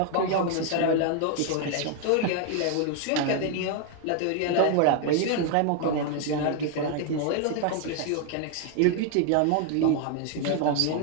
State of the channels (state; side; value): different; both; correlation 0.00